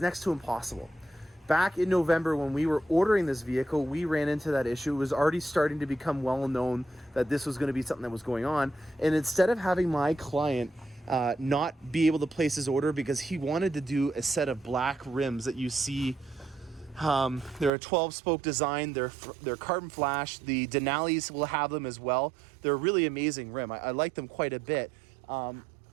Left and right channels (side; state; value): left; drops out; at 17.7 s